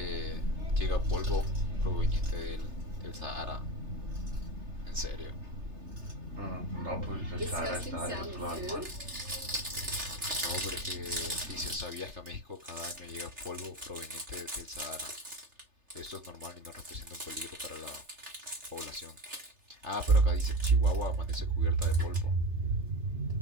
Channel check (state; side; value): late; left; 3.3 ms